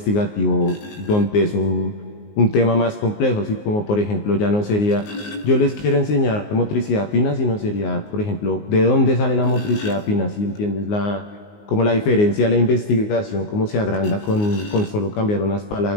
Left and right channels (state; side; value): late; right; 19 ms